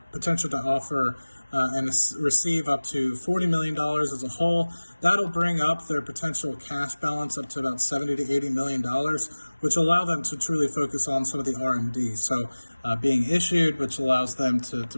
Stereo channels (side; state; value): both; inverted; correlation -1.00